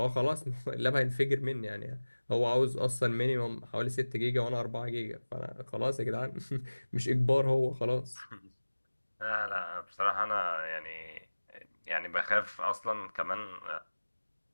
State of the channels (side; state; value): both; inverted; correlation -1.00